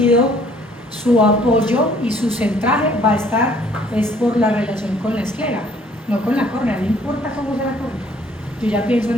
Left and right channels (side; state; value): both; normal; correlation 0.60